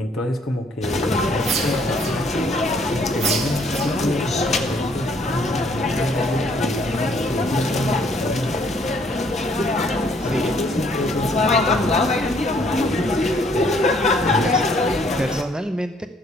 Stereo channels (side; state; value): both; normal; correlation 0.64